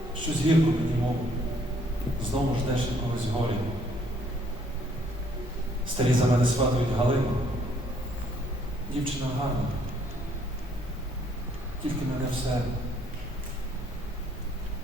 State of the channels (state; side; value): normal; both; correlation 0.65